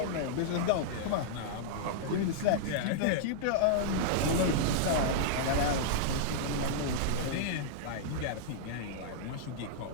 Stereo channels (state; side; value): different; both; correlation -0.02